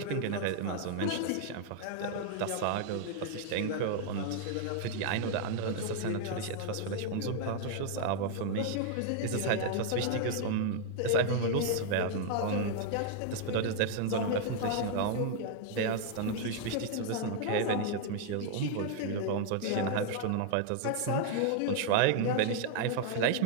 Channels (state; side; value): different; both; correlation 0.00